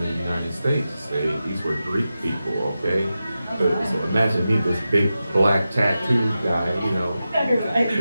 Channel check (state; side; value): inverted; both; correlation -0.92